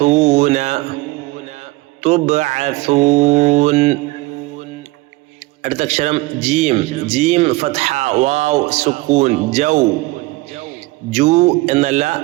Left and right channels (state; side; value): quieter; left; 21.3 dB